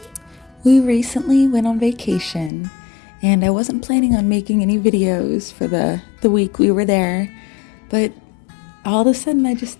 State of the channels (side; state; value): right; drops out; at 2.5 s